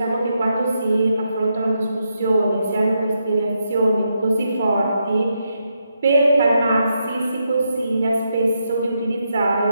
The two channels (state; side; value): inverted; both; correlation -0.82